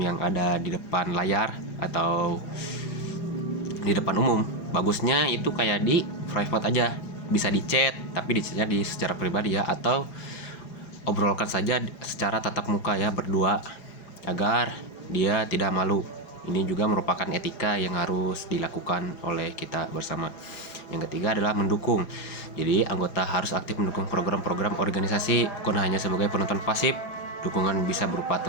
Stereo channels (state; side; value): late; right; 4.9 ms